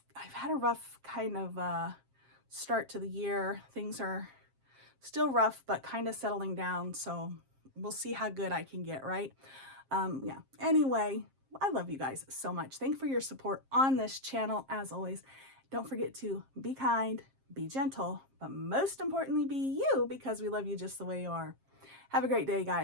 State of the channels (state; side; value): late; left; 7.5 ms